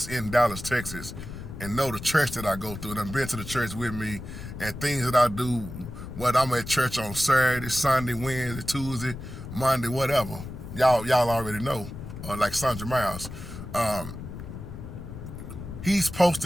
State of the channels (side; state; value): left; noise; rumble, 10 dB below the sound